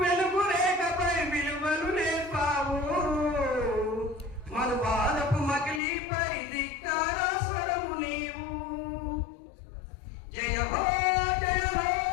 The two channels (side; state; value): right; drops out; at 5.8 s